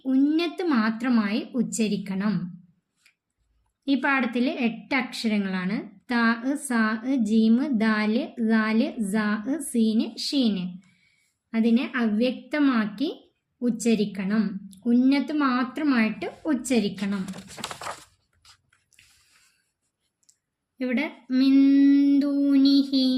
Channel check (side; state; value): both; identical; correlation 1.00